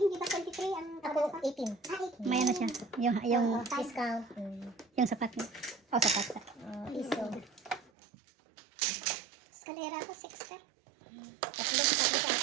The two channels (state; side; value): drops out; left; at 7.9 s